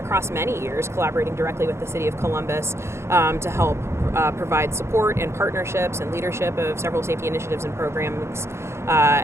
many years collaborating directly with the city of Columbus to help provide support and partnerships and leadership of several safety initiatives and programs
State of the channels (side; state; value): left; late; 0.13 ms